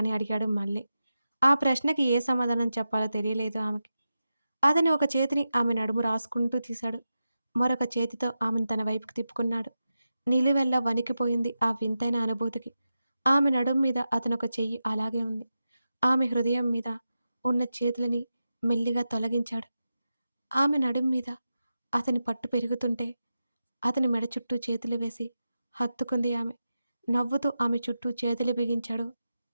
అడిగాడు మళ్ళీ. ఆ ప్రశ్నకి ఏ సమాధానం చెప్పాలో తెలియలేదు ఆమెకి. అతని ఒక చేతిని ఆమె నడుము రాసుకుంటూ తీశాడు. మరొక చేతితో ఆమెను తన వైపుకి తిప్పుకున్నాడు. నిలువెల్లా వణికిపోయింది ఆ వింతైన అనుభూతికి. ఆమె నడుం మీద అతనొక చెయ్యి అలాగే ఉంది. ఆమె హృదయం మీద ఉన్న చేతులని మెల్లిగా తొలగించాడు. ఆమె నడుం మీద అతని పట్టు పెరుగుతుంటే అతని మెడ చుట్టూ చేతులు వేసి హత్తుకుంది ఆమె. నవ్వుతూ ఆమె చుట్టూ చేతులు బిగించాడు.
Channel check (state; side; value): inverted; both; correlation -0.91